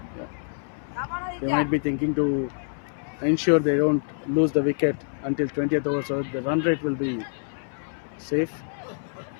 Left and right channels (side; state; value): right; silent; 59 dB below the other